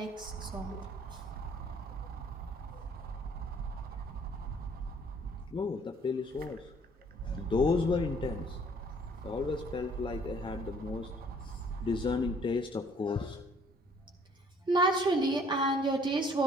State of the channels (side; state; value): both; normal; correlation 0.59